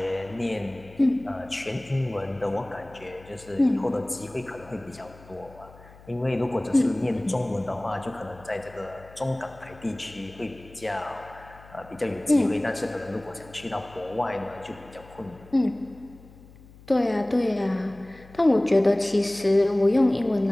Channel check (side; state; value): left; noise; hum, 22 dB below the sound